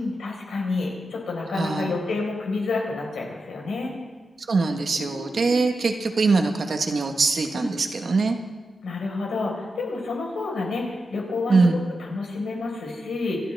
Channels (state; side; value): normal; both; correlation 0.89